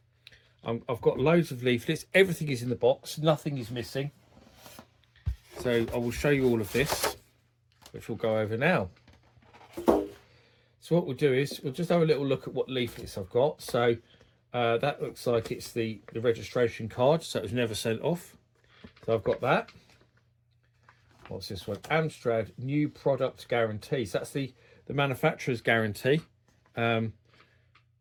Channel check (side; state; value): both; identical; correlation 1.00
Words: got loads of leaflets. Everything is in the box. Nothing is missing. So, I will show you all of this, which we'll go over now. So, what we'll do is we'll just have a little look at what leaflets I've got. So, that looks like it's the registration card. So, it was never sent off. So I've got that. What's this one? Amstrad new product guarantee. So that's the manufacturer's guarantee,